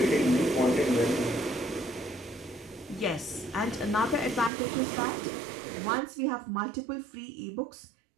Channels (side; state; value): left; drops out; at 4.5 s